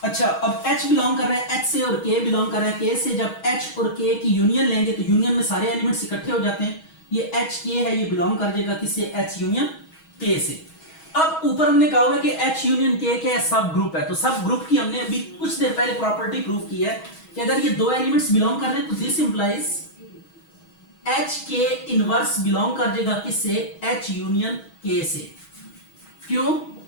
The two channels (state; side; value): late; right; 6.3 ms